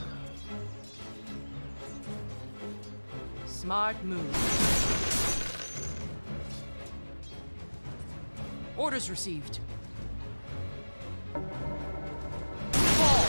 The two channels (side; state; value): both; inverted; correlation -1.00